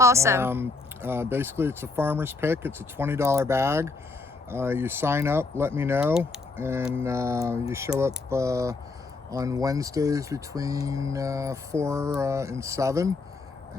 Basically, it's a farmer's pick. It's a $20 bag. You sign up, let me know, and you show up on Wednesdays between 4 and 7,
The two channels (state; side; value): quieter; right; 3.8 dB